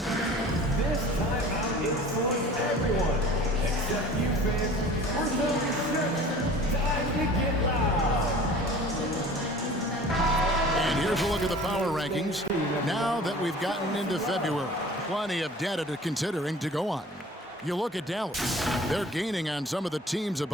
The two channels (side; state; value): both; normal; correlation 0.45